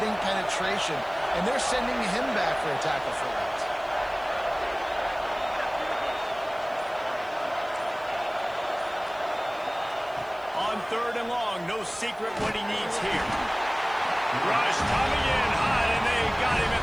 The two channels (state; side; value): noise; right; hiss, 28 dB below the sound